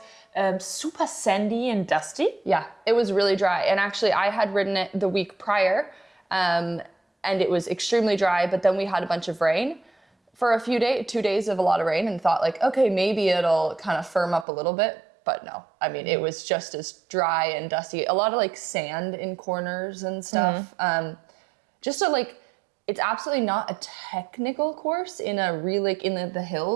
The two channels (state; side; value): drops out; left; at 14.5 s